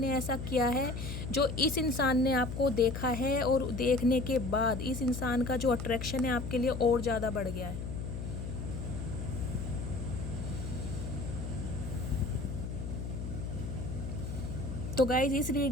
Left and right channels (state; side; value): noise; left; hum, 5 dB below the sound